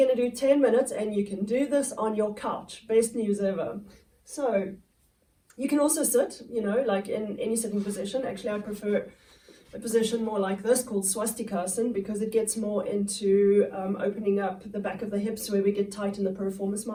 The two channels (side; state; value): both; identical; correlation 1.00